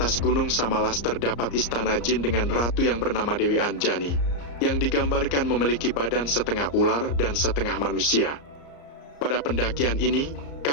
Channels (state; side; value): late; right; 34 ms